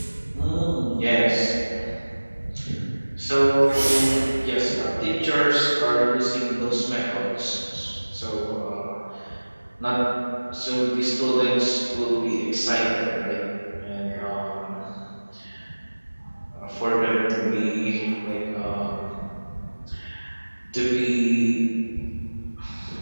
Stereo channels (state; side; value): inverted; both; correlation -1.00